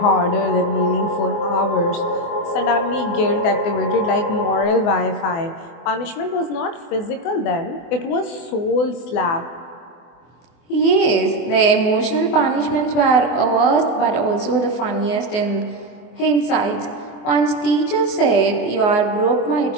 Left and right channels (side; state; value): right; late; 24 ms